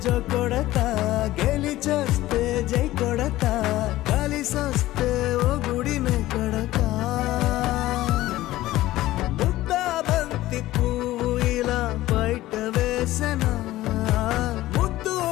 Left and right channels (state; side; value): quieter; right; 16.2 dB